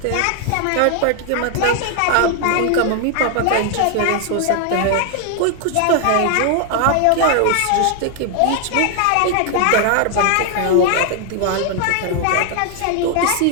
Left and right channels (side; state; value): both; different; correlation 0.00